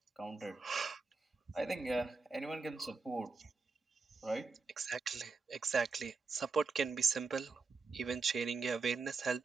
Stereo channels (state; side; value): quieter; left; 4.3 dB